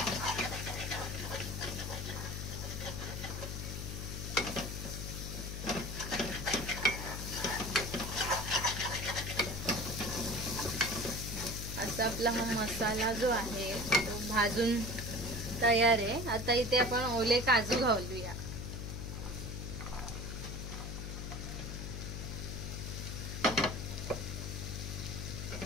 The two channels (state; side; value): noise; left; hum, 5 dB below the sound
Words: आता आपला हा मसाला जो आहे तो भाजून तयार आहे. आता इथे आपण ओले काजू घालूया.